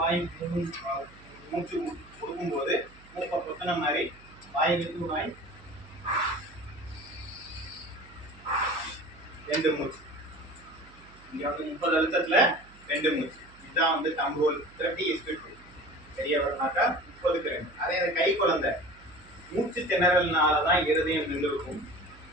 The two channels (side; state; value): right; noise; hum, 24 dB below the sound